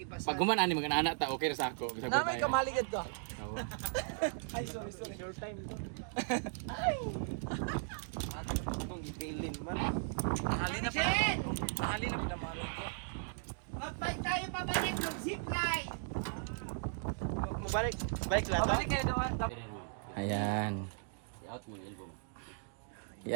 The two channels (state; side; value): silent; left; digital silence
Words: Pag gumanaan ni mga anak ta, okay ra sa ako. Bisag Na may tayo. kamaligad ka. Tawa. Ay, sorry. Short time ito. Nakali na mami ko. Mag-bike tayo pabalik ng zipline. Mabalik. Bike lang. Babalik kayo naman. Ayan.